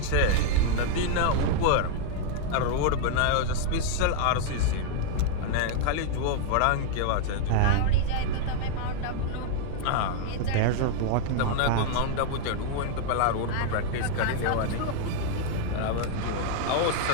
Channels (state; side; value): different; both; correlation 0.00